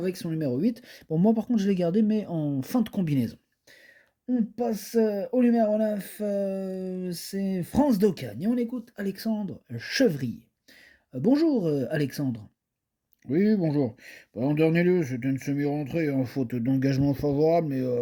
son numéro 8. Bon, moi par contre je l'ai gardé mais en fin de combinaison. On passe au numéro 9, c'est France d'Ocagne et on écoute Alexandre Chevrier. Bonjour Alexandre. Oui, bonjour. Bah, en dernier lieu, c'était une semi-rentrée, hein, faute d'engagement favorable,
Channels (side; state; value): both; identical; correlation 1.00